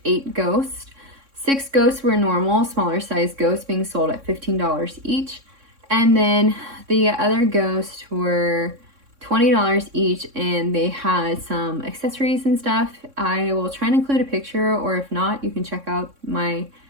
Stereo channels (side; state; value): left; late; 3.6 ms